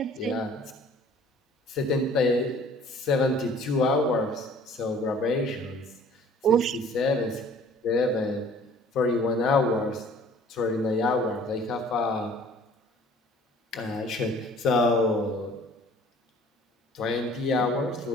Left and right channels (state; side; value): normal; both; correlation 0.52